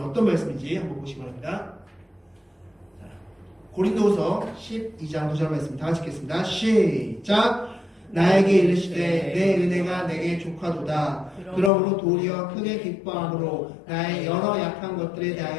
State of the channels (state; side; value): drops out; right; at 11.7 s